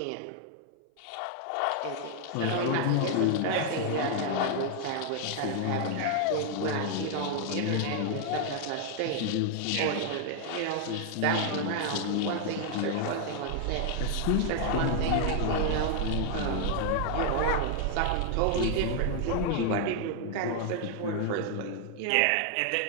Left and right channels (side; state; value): both; different; correlation 0.00